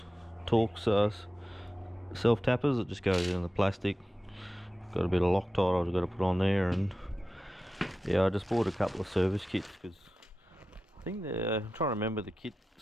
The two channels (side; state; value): both; normal; correlation 0.93